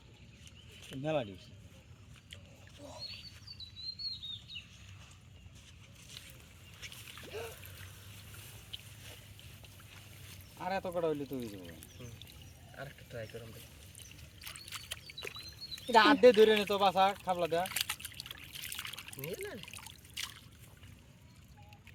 মেলা দিস আর এত কটা হইলে তুই দেবো আর একটা ট্রাই করুন এটা হাত দিয়ে ধরে নি তো বাসা খাবলা দেয়া নিয়ে না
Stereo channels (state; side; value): identical; both; correlation 1.00